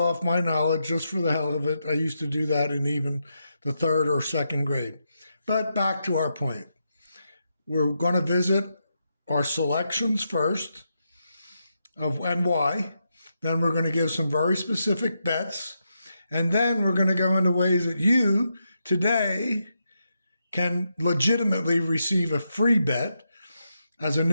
my knowledge just for the hell of it. I used to do that in even the third or second grade. But back to our point. We're going to visit our selections first of and why. Then we're going to give some very specific bets. And then we're going to go into ways that you today can legitimately receive a free bet as a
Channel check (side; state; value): both; inverted; correlation -0.84